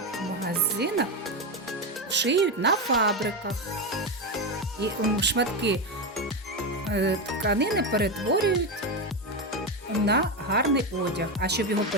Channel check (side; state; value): both; normal; correlation 0.12